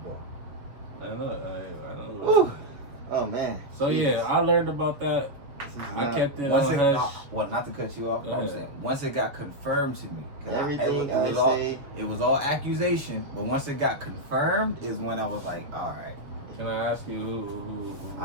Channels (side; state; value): left; late; 6.9 ms